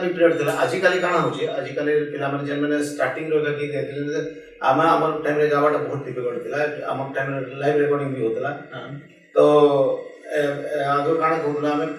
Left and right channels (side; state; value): both; identical; correlation 1.00